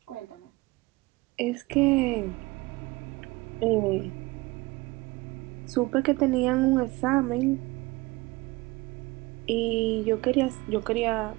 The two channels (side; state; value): left; quieter; 22.5 dB